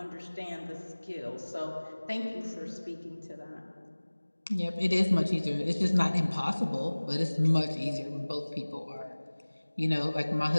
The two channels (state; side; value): inverted; both; correlation -1.00